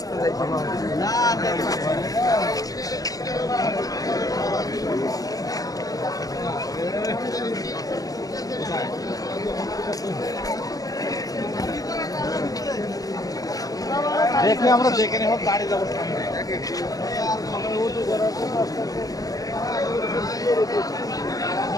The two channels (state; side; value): late; right; 0.17 ms